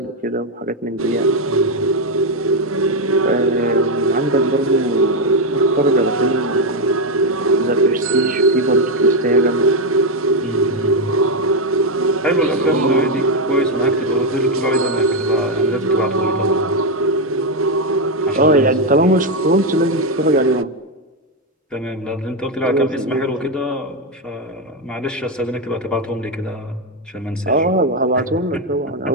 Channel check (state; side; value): normal; both; correlation 0.04